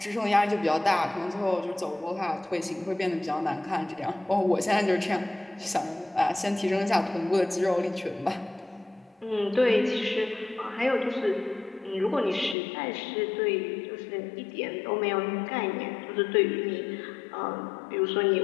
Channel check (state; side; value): drops out; right; at 12.6 s